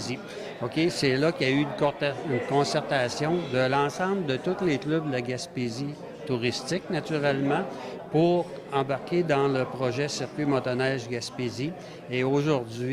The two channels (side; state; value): both; identical; correlation 1.00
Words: OK? C'est là qu'il y a eu une concertation de l'ensemble de tous les clubs de la Gaspésie touristique, naturellement, pour embarquer dans le projet Circuit motoneige Gaspésie. Et